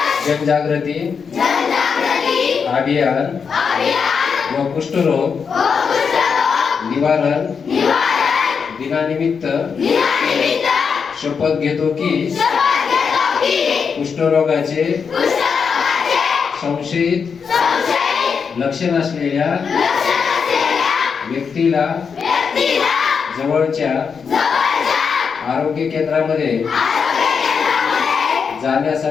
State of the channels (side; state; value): right; quieter; 6.1 dB